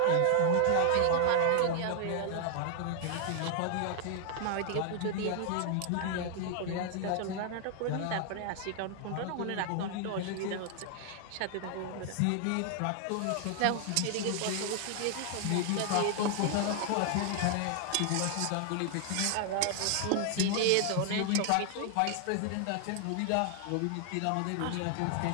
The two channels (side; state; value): both; different; correlation 0.00